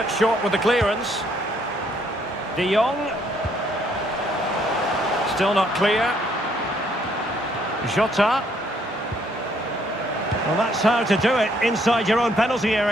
short with the clearance. De Jong. Still not clear. Jota. Well, that's how to do it inside your own penalty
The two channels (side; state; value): both; normal; correlation 0.68